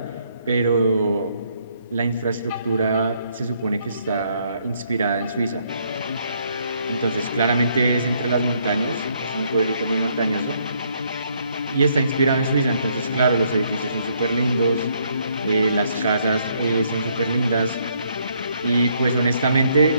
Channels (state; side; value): inverted; both; correlation -0.70